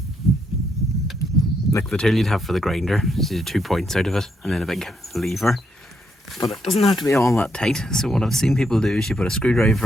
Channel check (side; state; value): both; normal; correlation 0.77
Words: like the tool you'd have for the grinder. So you do 2 points out of it and then a big lever. But it doesn't have to be all that tight. So what I've seen people do is you put a